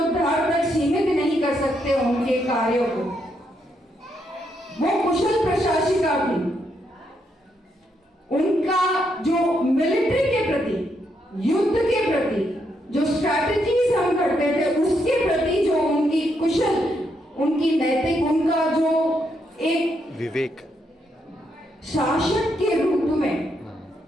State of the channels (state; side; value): normal; both; correlation 0.78